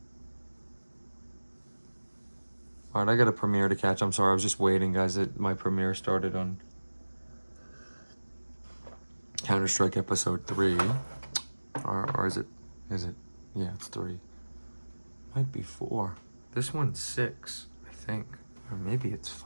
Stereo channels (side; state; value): both; inverted; correlation -1.00